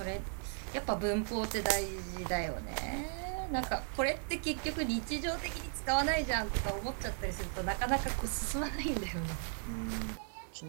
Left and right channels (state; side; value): silent; left; 54 dB below the other